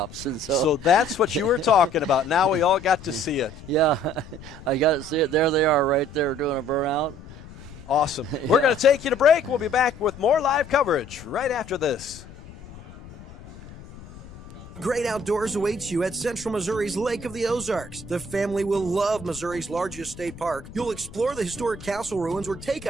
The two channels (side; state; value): left; noise; rumble, 17 dB below the sound